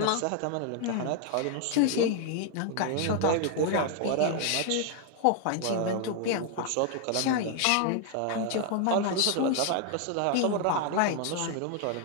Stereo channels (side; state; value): both; different; correlation 0.00